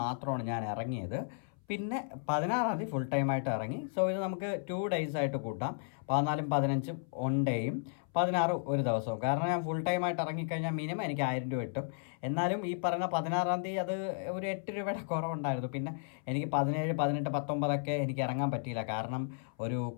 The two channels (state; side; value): silent; right; 55 dB below the other